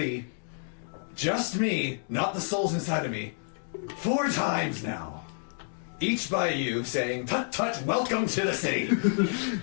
just me, not the souls inside of me, 4 times now. Each by you saying, "Tut tut, welcome to the city."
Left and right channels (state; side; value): silent; right; digital silence